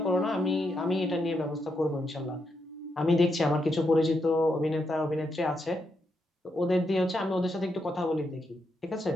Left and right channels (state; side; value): normal; both; correlation 0.82